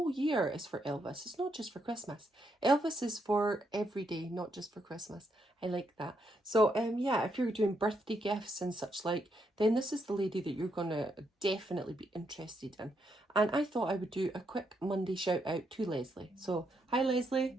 year is for Elvis. It's not just for Christmas. Elvis is for every day, not just for Christmas. I like that. So yeah, if you're doing birthday gifts and such like, then this is the lady that you're gonna definitely be interested in. And I thought I would do a quick Monday shout out to Leslie. So hi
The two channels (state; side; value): normal; both; correlation 0.78